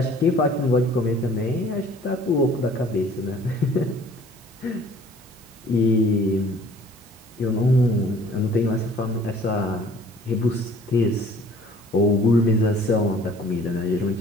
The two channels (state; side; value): normal; both; correlation 0.53